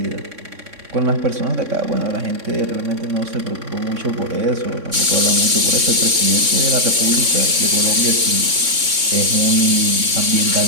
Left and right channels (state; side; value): late; left; 3.6 ms